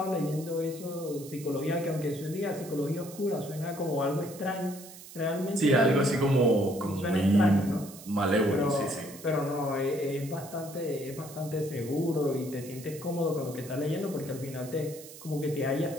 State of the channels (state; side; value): noise; right; hiss, 16 dB below the sound